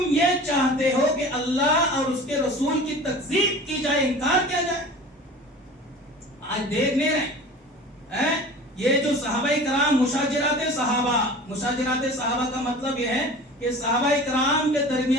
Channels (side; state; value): both; normal; correlation 0.40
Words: یہ چاہتے ہو کہ اللہ اور اس کے رسول کی تکذیب کی جائے، انکار کیا جائے؟ آج دیکھ نہیں رہے یہ جو صحابہ کرام مشاجرات صحابہ کا مطلب یہ ہے کہ صحابہ کرام کے